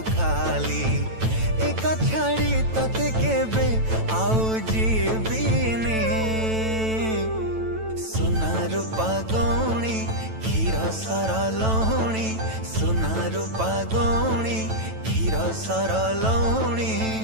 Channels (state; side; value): late; left; 9.1 ms